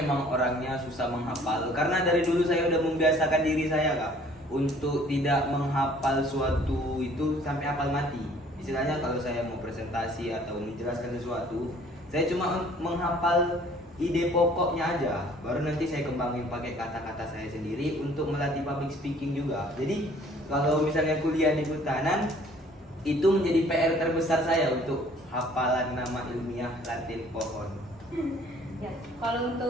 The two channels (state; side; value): normal; both; correlation 0.55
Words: orangnya susah menghafal. Karena dari dulu saya udah membiasakan diri saya Kak untuk tidak menghafal suatu itu sampai hafal mati. Istilahnya kalau saya mau presentasi atau menjelaskan sesuatu, saya cuma menghafal ide pokoknya aja, baru nanti saya kembangin pakai kata-kata saya sendiri untuk melatih public speaking juga. Jadi kalau misalnya kuliah di kehutanan, itu menjadi PR terbesar saya untuk hafalan nama ilmiah Latin pohon. Ya, kalau